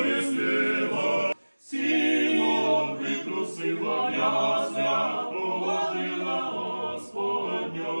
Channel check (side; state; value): both; inverted; correlation -1.00